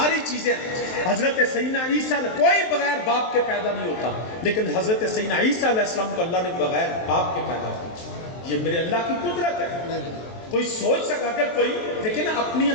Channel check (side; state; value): right; late; 23 ms